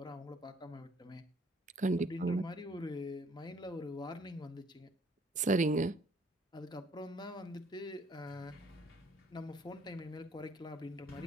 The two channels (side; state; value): both; normal; correlation 0.62